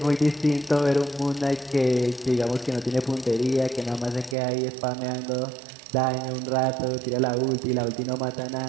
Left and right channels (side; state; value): left; drops out; at 4.4 s